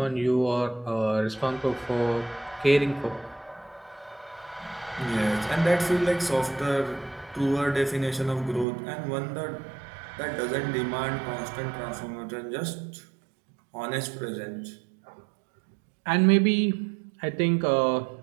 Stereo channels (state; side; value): drops out; left; at 8.7 s